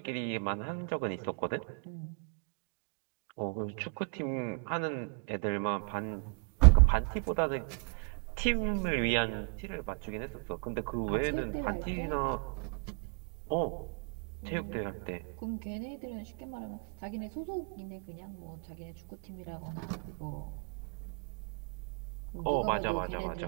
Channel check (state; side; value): quieter; left; 36.2 dB